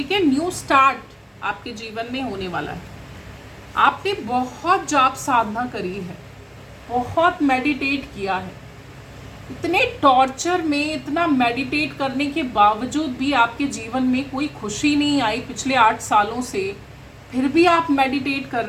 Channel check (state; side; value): identical; both; correlation 1.00